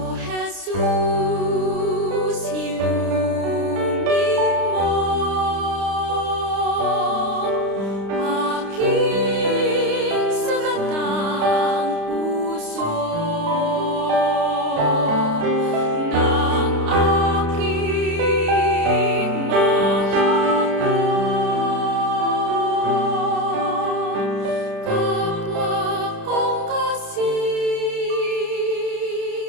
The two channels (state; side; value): late; left; 29 ms